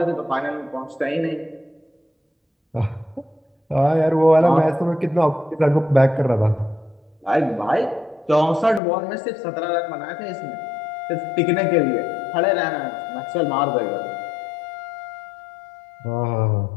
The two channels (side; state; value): right; drops out; at 8.8 s